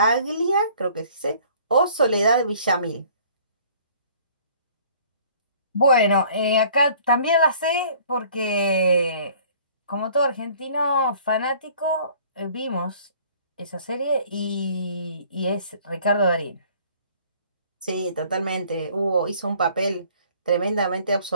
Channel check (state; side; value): inverted; both; correlation -0.54